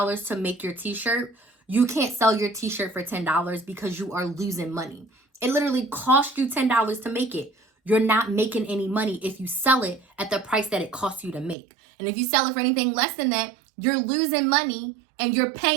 to make your t-shirt, You can't sell your t-shirt for $10 because you are losing money. It literally cost you $10 to make it. You're not making any money if you sell it at the price that it costs you to make. And if you sell it for anything less than that, you're losing money and you're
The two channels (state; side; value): drops out; left; at 11.6 s